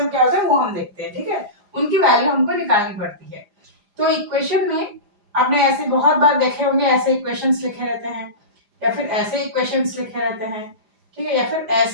क्या होते हैं, वो हम देखते हैं। ठीक है, उनकी वैल्यू हमको निकालनी पड़ती है। तो इक्वेशन में आपने ऐसे बहुत बार देखे होंगे, ऐसे इक्वेशंस लिखे रहते हैं या फिर ऐसे इक्वेशंस लिखे रहते हैं। ठीक है, या फिर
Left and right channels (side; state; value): left; late; 4.9 ms